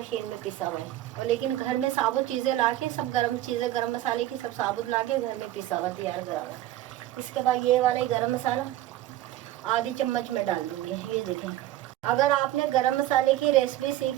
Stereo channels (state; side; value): quieter; left; 14.3 dB